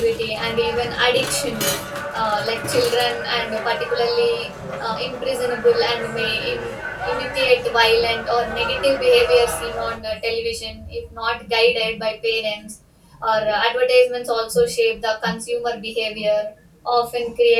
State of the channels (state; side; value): identical; both; correlation 1.00